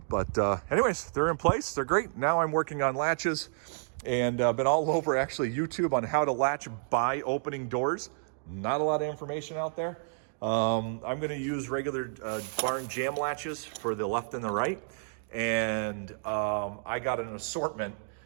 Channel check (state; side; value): silent; left; digital silence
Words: but anyways, they're in place. They're great. Now I'm working on latches, and been all over actually YouTube on how to latch by opening doors. Not a lot of information out there. I'm going to use regular barn jam latches for the left and the right, and I got an assortment.